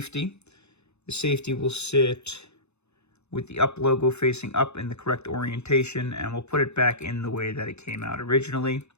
The safety will sit with the up logo facing up in the correct orientation, and we'll put it back in the way that it came out originally,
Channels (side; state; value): right; late; 0.81 ms